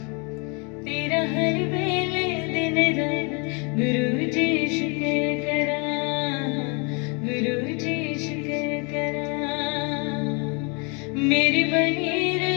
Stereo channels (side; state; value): right; quieter; 33.3 dB